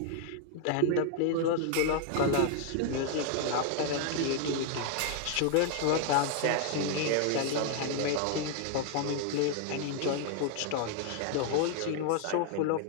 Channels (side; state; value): both; different; correlation 0.00